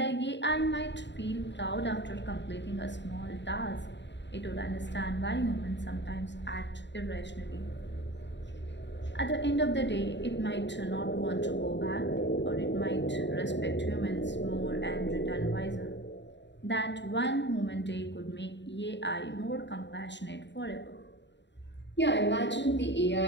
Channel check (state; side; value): late; right; 0.52 ms